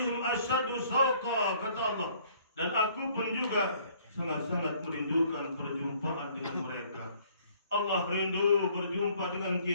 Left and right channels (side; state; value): both; inverted; correlation -0.60